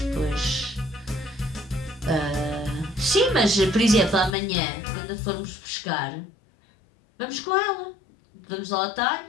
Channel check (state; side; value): drops out; right; at 4.4 s